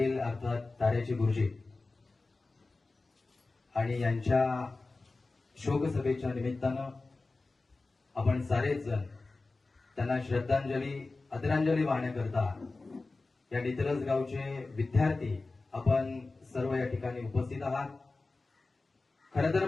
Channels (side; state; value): right; quieter; 3.5 dB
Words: अर्थात ताऱ्याचे गुरुजी आणि यांच्या शोकसभेच्या निमित्तानं आपण सारेच जण त्यांना श्रद्धांजली आदरांजली वाहण्याकरता या नितरस गावचे विद्यार्थी आपण सर्व या ठिकाणी उपस्थित आहात. खरं तर